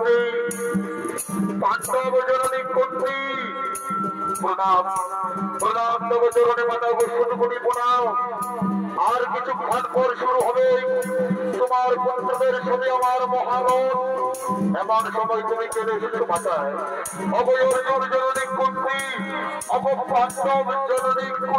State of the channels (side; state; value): both; identical; correlation 1.00